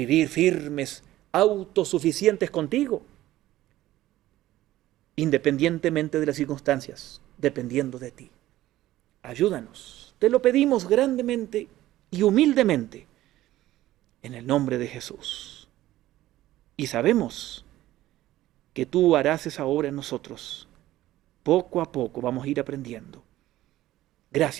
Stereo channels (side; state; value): left; quieter; 15.1 dB